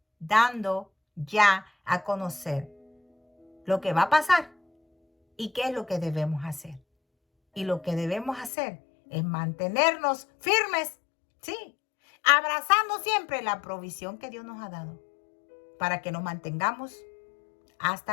dando ya a conocer lo que va a pasar y qué es lo que debemos hacer. Y lo que debemos hacer es mantenernos firmes Sí, abrazando siempre la provisión que Dios nos ha dado para que nos mantengamos hasta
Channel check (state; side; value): drops out; right; at 8.5 s